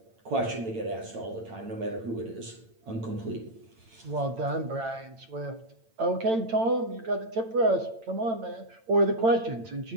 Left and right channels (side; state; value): left; late; 8.9 ms